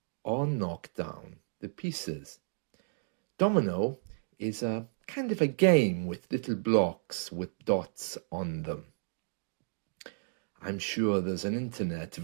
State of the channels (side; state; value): left; silent; digital silence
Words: or knock down the pieces. Domino is a kind of a game with little blocks with dots on them. I'm sure there's an internet